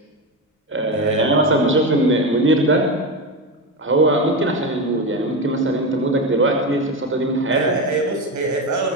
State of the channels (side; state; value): both; normal; correlation 0.17